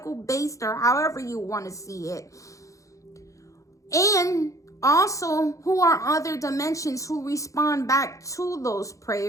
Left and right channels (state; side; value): late; right; 0.15 ms